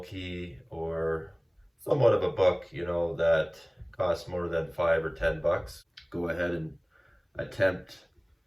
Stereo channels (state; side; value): identical; both; correlation 1.00